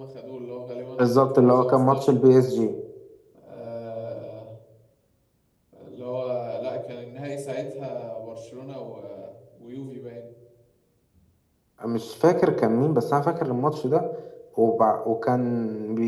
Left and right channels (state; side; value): identical; both; correlation 1.00